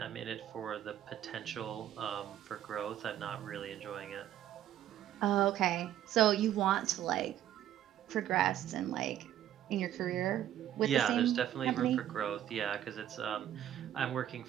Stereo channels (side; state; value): left; quieter; 11.6 dB